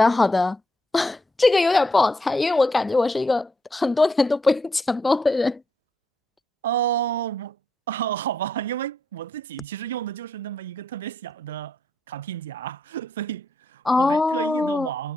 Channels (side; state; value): both; normal; correlation 0.79